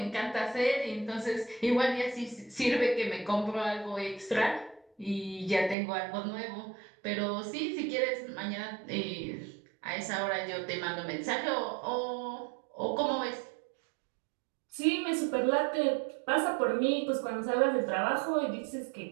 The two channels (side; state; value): left; drops out; at 5.8 s